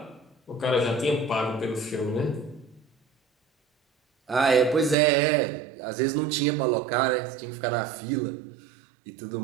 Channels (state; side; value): drops out; left; at 5.0 s